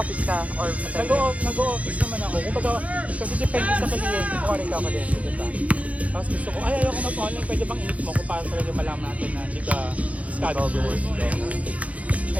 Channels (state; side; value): late; left; 0.067 ms